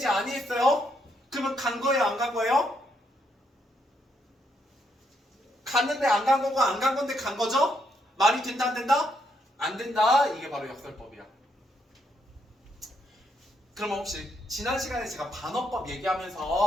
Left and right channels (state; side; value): normal; both; correlation 0.76